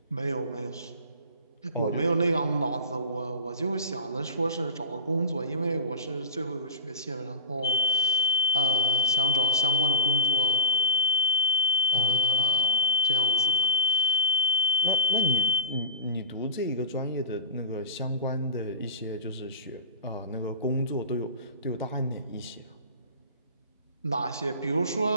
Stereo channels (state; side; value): inverted; both; correlation -0.30